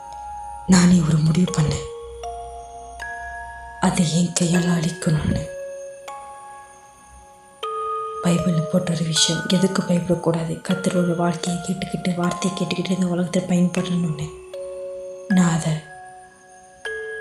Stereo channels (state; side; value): identical; both; correlation 1.00